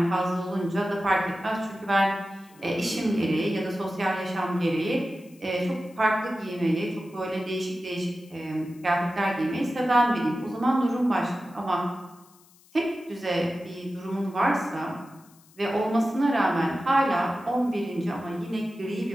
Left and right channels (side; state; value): left; noise; hiss, 28 dB below the sound